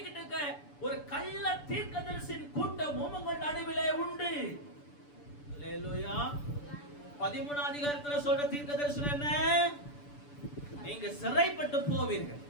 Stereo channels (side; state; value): right; late; 6.9 ms